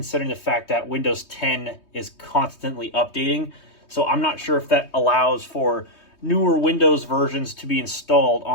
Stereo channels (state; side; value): late; right; 3.2 ms